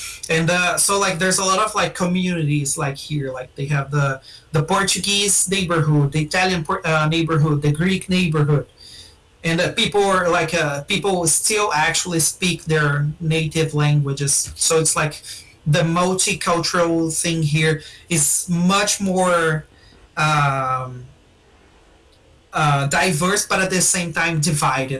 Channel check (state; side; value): identical; both; correlation 1.00